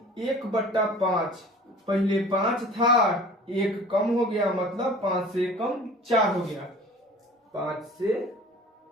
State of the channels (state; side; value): normal; both; correlation 0.45